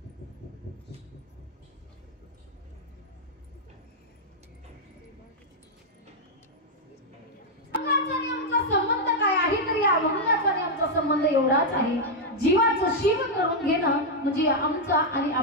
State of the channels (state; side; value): normal; both; correlation -0.02